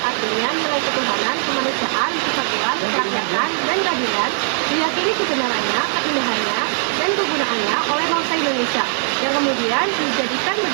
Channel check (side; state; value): left; silent; digital silence